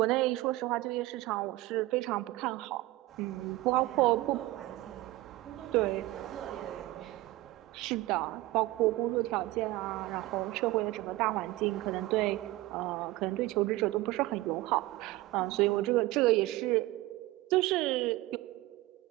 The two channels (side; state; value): left; quieter; 18.5 dB